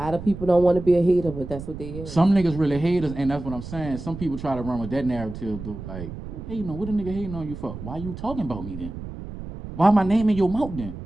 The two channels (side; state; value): right; noise; rumble, 10 dB below the sound